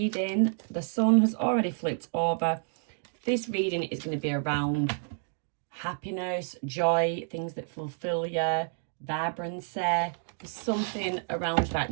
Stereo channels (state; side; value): silent; left; 58 dB below the other